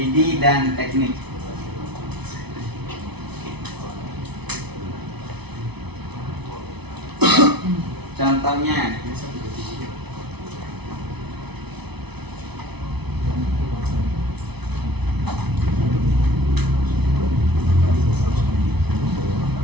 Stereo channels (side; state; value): left; late; 0.99 ms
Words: dan teknik. Contohnya,